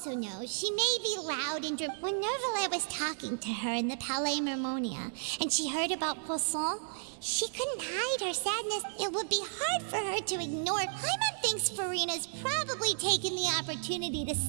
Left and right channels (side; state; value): left; silent; digital silence